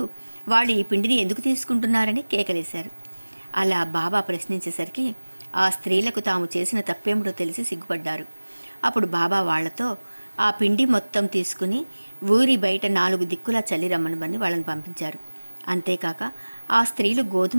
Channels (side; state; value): both; inverted; correlation -1.00